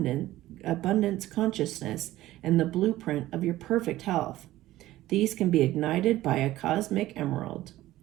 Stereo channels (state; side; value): quieter; left; 15.6 dB